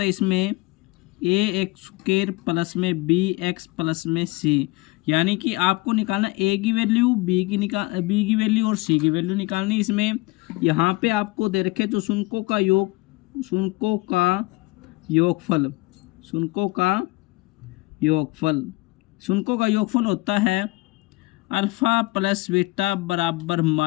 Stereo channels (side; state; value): right; quieter; 22.4 dB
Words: है इसमें ए एक्स स्क्वायर प्लस में बी एक्स प्लस में सी, यानी कि आपको निकालना ए की वैल्यू, बी की वैल्यू और सी की वैल्यू निकालनी। इसमें यहाँ पे आपको दे रखे तो शुनकों का योगफल होता है अल्फ़ा प्लस बीटा बराबर